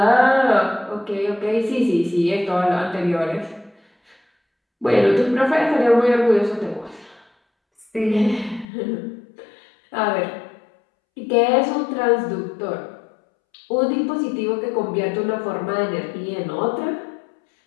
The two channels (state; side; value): drops out; right; at 8.7 s